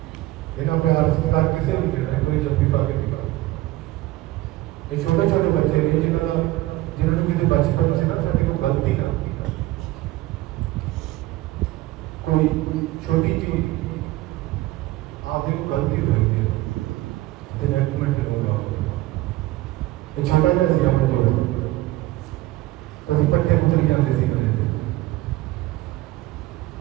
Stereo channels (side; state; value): left; quieter; 17.6 dB